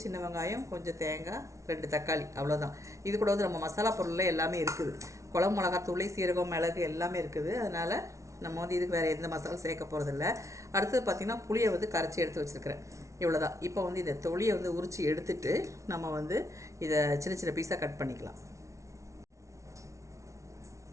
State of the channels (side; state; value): left; late; 0.14 ms